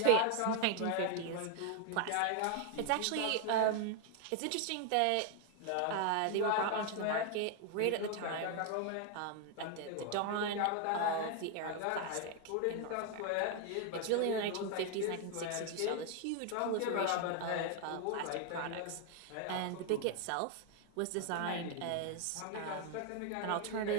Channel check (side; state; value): both; different; correlation 0.00